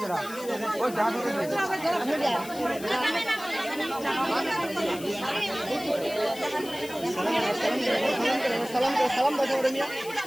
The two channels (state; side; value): noise; left; hiss, 15 dB below the sound